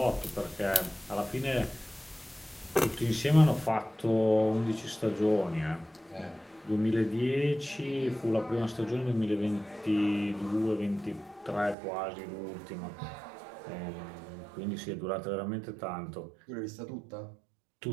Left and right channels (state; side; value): drops out; left; at 11.8 s